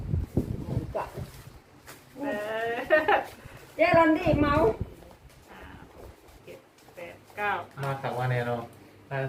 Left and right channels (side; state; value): both; identical; correlation 1.00